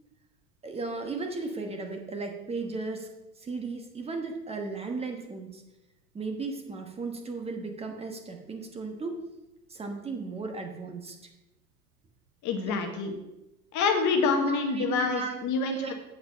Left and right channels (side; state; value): both; normal; correlation 0.28